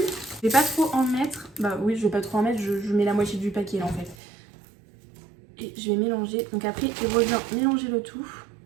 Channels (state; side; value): drops out; left; at 4.2 s